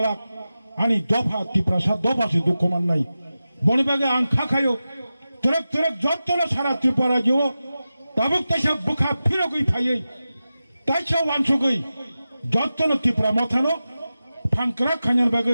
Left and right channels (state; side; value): inverted; both; correlation -0.93